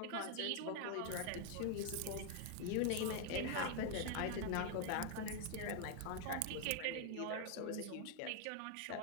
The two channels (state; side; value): different; both; correlation 0.00